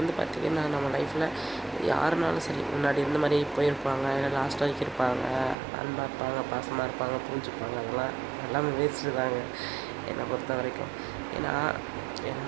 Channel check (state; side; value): drops out; left; at 5.6 s